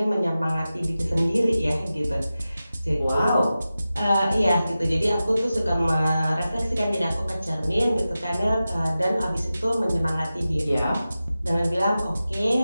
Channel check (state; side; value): inverted; both; correlation -0.94